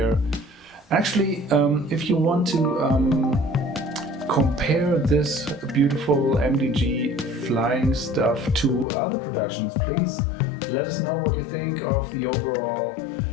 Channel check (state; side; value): drops out; right; at 8.8 s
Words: Actually, if you want to compare this beautiful MDG flying stuff to other productions, please let us know what you think of the overall